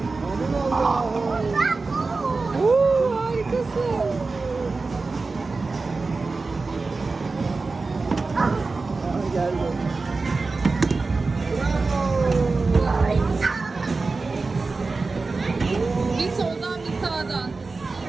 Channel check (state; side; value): quieter; left; 3.9 dB